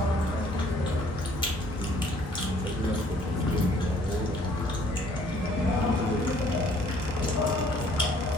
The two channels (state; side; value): normal; both; correlation 0.60